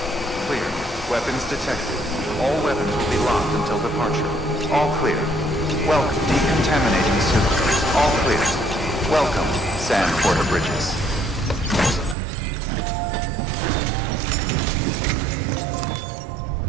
Clear. Weapons detected. All weapons will be locked until departure. All clear. Welcome. Decontaminating suit. All clear. Welcome, San Porter Bridges.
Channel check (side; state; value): left; drops out; at 12.2 s